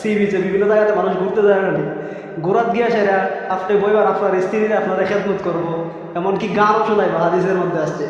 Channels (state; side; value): identical; both; correlation 1.00